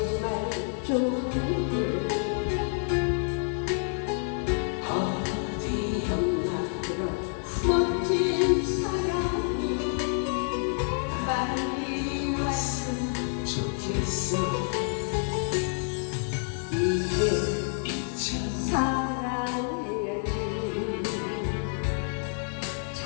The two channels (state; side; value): silent; right; 59 dB below the other